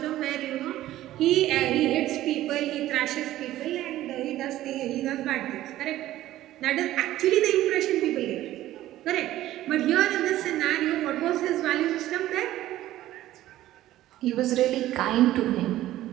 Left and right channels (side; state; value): left; quieter; 14.5 dB